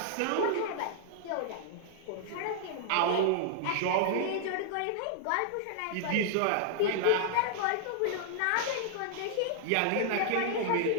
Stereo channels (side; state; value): both; different; correlation -0.01